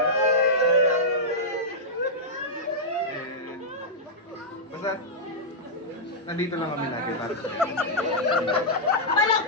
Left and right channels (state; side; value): normal; both; correlation -0.09